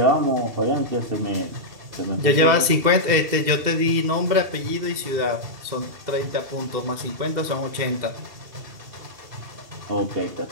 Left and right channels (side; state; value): left; late; 2.7 ms